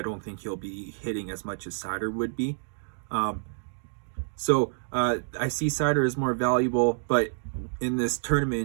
don't think he'll be hitting as much as Seider would be. So I see Seider as more valuable, but in this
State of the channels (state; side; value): silent; left; digital silence